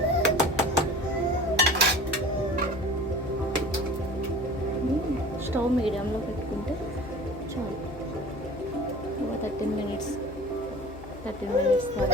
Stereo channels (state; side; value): noise; left; hum, 16 dB below the sound